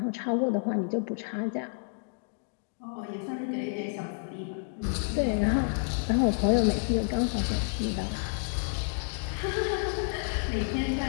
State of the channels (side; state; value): right; silent; 58 dB below the other